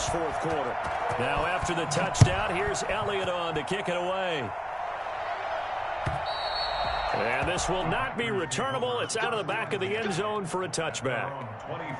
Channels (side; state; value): both; identical; correlation 1.00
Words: 4th quarter. Now after the touchdown, here's Elliott on to kick it away. And this will not be returnable. It's out of the back of the end zone for a touchback.